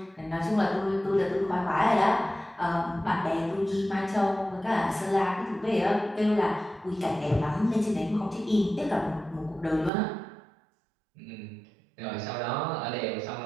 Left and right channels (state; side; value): drops out; left; at 9.9 s